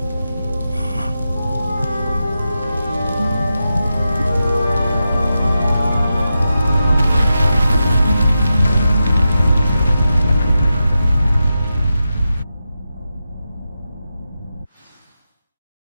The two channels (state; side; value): inverted; both; correlation -0.90